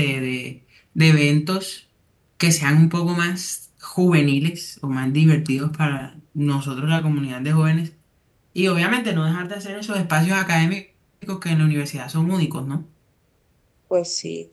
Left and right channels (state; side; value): identical; both; correlation 1.00